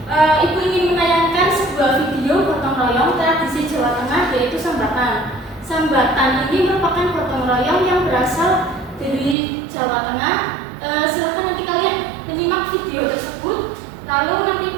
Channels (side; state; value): left; drops out; at 9.3 s